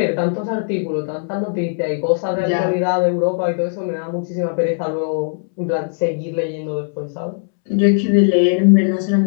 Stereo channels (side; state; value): right; silent; 67 dB below the other